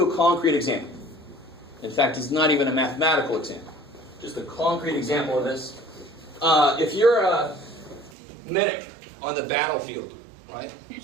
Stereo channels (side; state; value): left; drops out; at 8.2 s